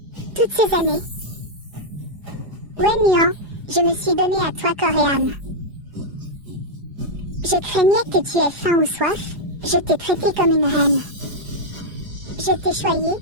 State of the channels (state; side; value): late; left; 4.9 ms